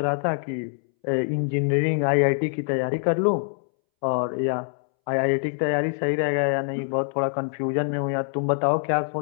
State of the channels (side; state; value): right; silent; 62 dB below the other